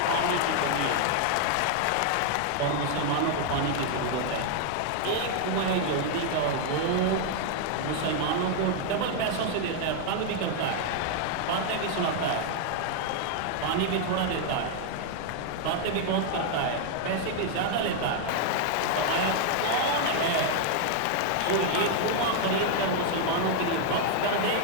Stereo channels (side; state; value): both; different; correlation 0.00